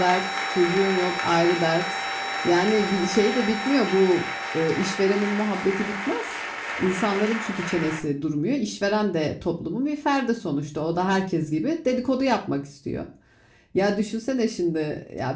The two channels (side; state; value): both; identical; correlation 1.00